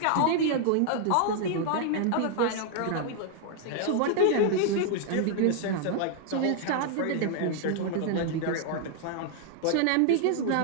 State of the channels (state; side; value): different; both; correlation 0.00